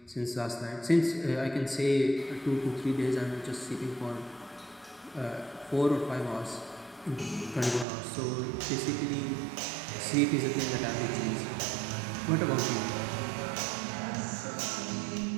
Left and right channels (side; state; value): left; drops out; at 7.9 s